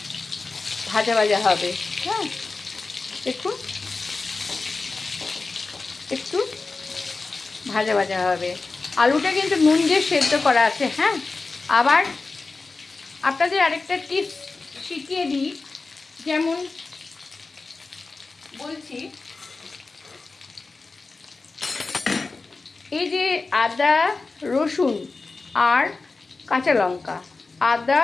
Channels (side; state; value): right; quieter; 3.8 dB